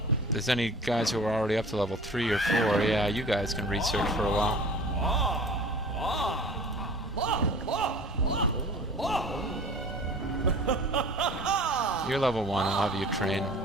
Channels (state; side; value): normal; both; correlation 0.43